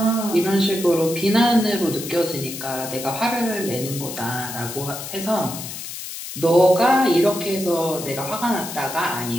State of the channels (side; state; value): left; noise; hiss, 9 dB below the sound